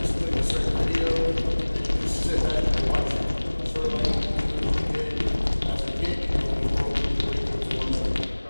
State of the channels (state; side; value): inverted; both; correlation -1.00